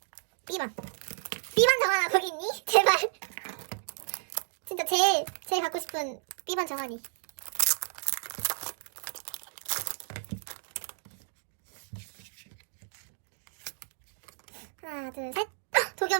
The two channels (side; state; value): left; silent; digital silence